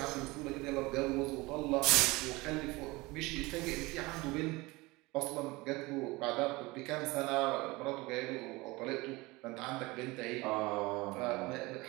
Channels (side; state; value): left; quieter; 22.4 dB